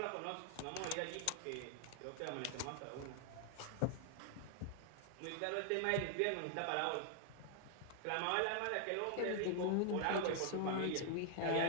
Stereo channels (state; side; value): different; both; correlation 0.00